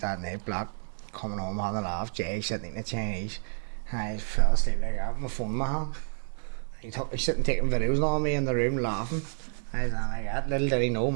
that night, black. Coming home on the laugh, Jay sitting in the Chinese. I fell asleep like that with my phone in my hand. He's sitting taking videos on me in the room laughing. I was like that. Little did he know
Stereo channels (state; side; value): silent; left; 58 dB below the other